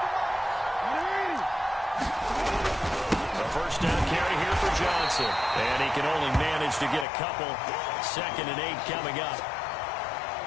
The first down carry here for Johnson. And he can only manage to get a couple. 2nd and 8 coming up.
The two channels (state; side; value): drops out; right; at 7.1 s